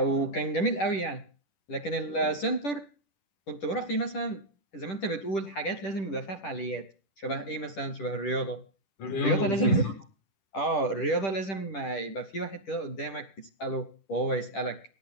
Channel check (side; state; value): right; late; 10 ms